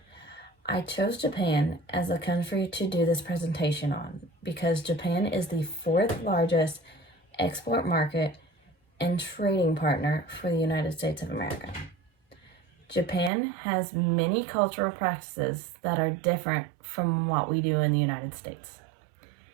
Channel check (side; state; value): left; drops out; at 13.3 s